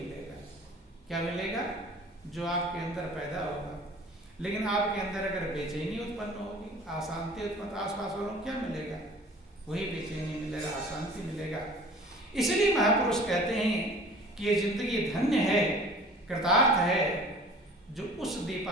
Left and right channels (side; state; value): both; normal; correlation 0.46